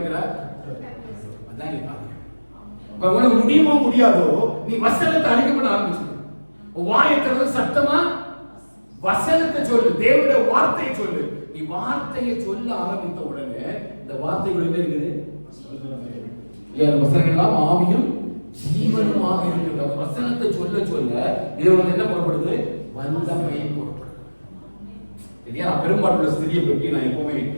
அதான் நீ பாருங்க. உனக்கு முடியுமோ முடியாதோ நீ வசனத்தை அறிக்கப்பட ஆரம்பிச்சு வாயத்தை சத்தமா வசனத்தை சொல்லு, தேவனுடைய வார்த்தையை சொல்லு. நீ வார்த்தையை சொல்ல ஆரம்பித்த உடனே இந்த வார்த்தைகள் என்ன இருக்குது? வசனங்கள் எல்லாம் ஆவியும் ஜீவனுமாக இருக்கிற வசனத்தை சொல்ல சொல்ல இது என்ன புறப்படுது? வல்லமை புறப்படுது. பெரும்பாலுள்ள ஸ்திரியை பற்றி நான் எப்பவுமே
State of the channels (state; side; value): inverted; both; correlation -1.00